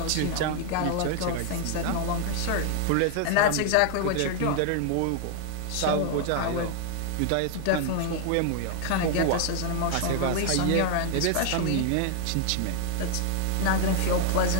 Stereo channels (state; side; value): different; both; correlation 0.00